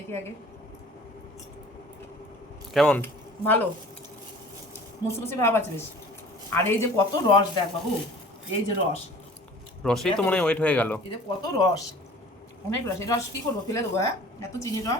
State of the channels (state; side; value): normal; both; correlation 0.46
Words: আগে। কেমন? ভালো, মুচমুচে ভাব আছে বেশ। আর এই যে কত রস দেখ বাবু, এই যে রস, রসেই তো মনে হয় ওয়েট হয়ে গেল। এই যে কত রস, অনেক রস। এই রস কি করবো, ফেলে দেবো? হ্যাঁ, এত চিনির